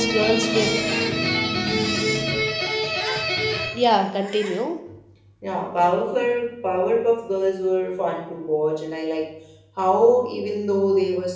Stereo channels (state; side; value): identical; both; correlation 1.00